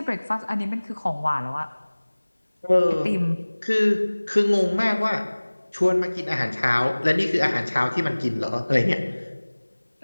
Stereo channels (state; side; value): inverted; both; correlation -1.00